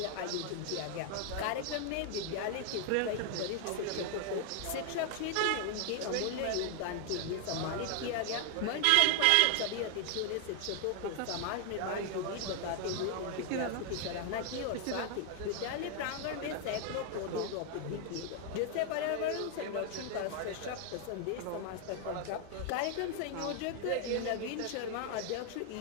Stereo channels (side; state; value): both; different; correlation 0.00